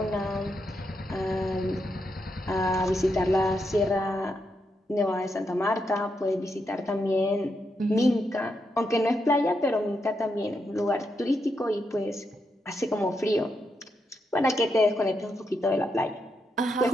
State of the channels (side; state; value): both; normal; correlation 0.82